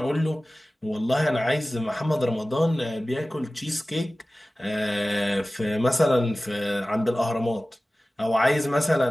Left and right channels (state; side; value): normal; both; correlation 0.97